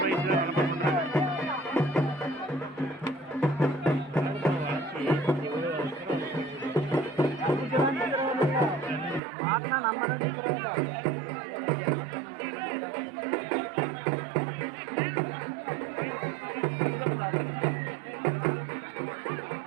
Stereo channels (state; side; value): drops out; left; at 9.2 s